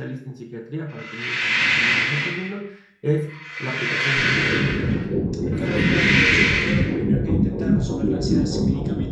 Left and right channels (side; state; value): both; identical; correlation 1.00